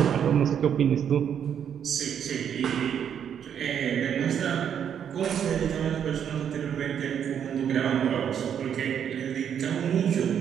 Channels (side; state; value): left; quieter; 8.6 dB